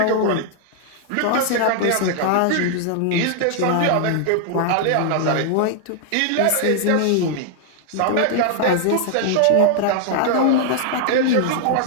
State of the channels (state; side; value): different; both; correlation 0.00